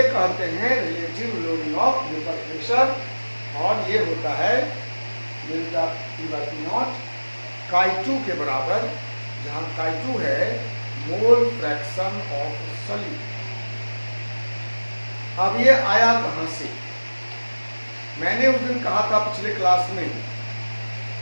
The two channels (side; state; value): both; inverted; correlation -1.00